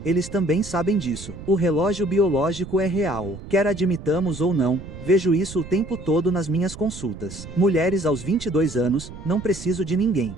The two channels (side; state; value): right; noise; rumble, 13 dB below the sound